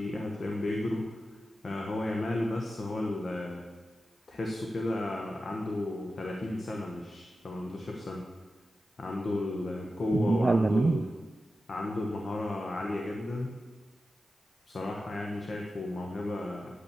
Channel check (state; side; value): normal; both; correlation 0.92